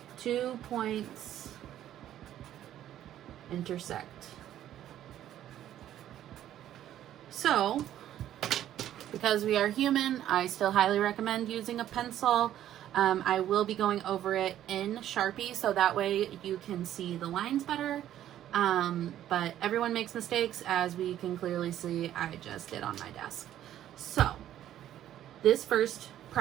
2 points intersect. So, because we are human, I still highly recommend using a pencil. I will be going over it in Sharpie so that way you can see the lines better. But everyone makes mistakes, as we can clearly see I just did on my desk. So, this first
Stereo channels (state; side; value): quieter; left; 11.8 dB